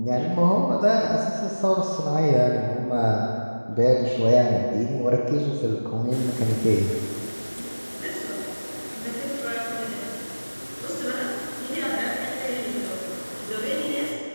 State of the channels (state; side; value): inverted; both; correlation -1.00